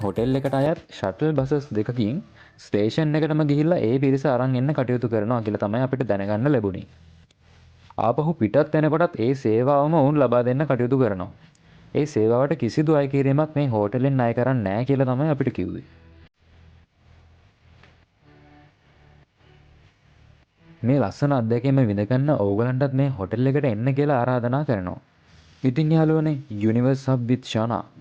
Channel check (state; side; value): identical; both; correlation 1.00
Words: හොටෙල් එකට අයත් ෂටල් බසස් දෙකකින් ස්ටේෂන් එකටම ගිහිල්ලා ඒ පිරිස අරන් එන්න කටයුතු කරනවා කියලා තමයි අපිට දැනගන්න ලැබුණේ. ආපහු පිටත් වෙනකොටත් ඒ සේවාවම වුන් ලබා දෙන්න කටයුතු කරනවා. ඒ සේවාවට කිසිදු අය කිරීමක් මේ හෝටලෙන් අය කරන්නේ නැහැ කියලා තමයි අපිට කිව්වේ. මේ ලස්සන අත්දැකීම විඳගන්න ඕගලන්ටත් මේ හොටෙල් එකට එන්න කියලා ආරාධනා කරනවා. ඉතින් යාළුවනේ Universe Hub with Shana